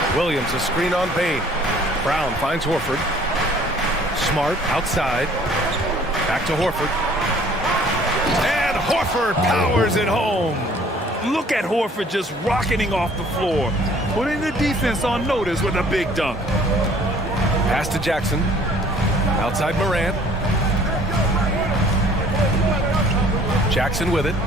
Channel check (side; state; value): both; normal; correlation 0.55